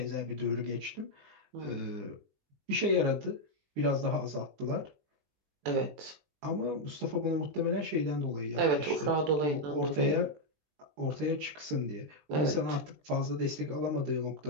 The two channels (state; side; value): late; left; 20 ms